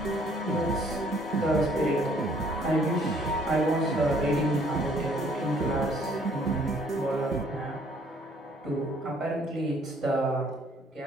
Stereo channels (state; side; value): normal; both; correlation 0.61